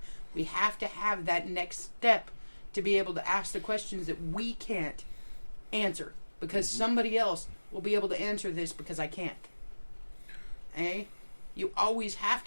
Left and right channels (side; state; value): both; inverted; correlation -1.00